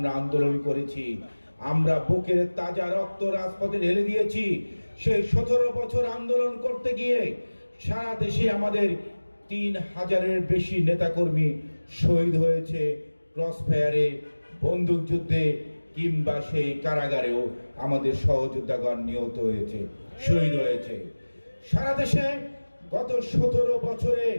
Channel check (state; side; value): inverted; both; correlation -1.00